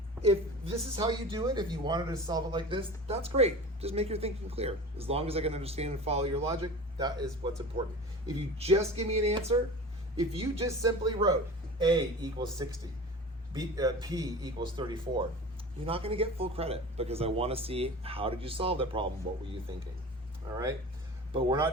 if this is how you do it, if you wanted to solve it like this, that's great. Just make your thinking clear. As long as I can understand and follow your logic, that is what's important. If you just give me an answer, if you just simply wrote A equals 60, P equals 34, you're not going to get full credit, because I want to see, how did you solve that problem? What were you thinking? All right, but we're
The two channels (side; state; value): both; normal; correlation 0.35